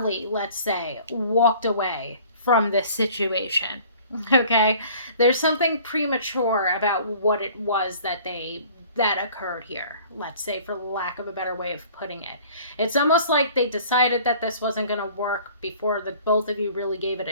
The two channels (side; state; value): both; inverted; correlation -0.50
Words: let's say, walked away from this situation. Okay? There's something premature about what it was that occurred here, let's say, for lack of a better way of putting it. It's almost like they decided that this wasn't going to work before the both of you really gave it